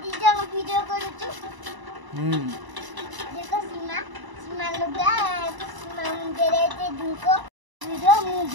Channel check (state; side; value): late; left; 1.0 ms